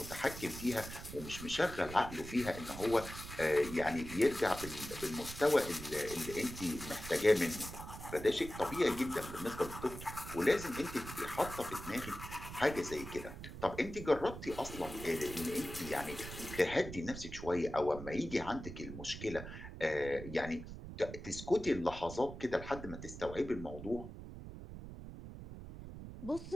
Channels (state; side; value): noise; right; rumble, 11 dB below the sound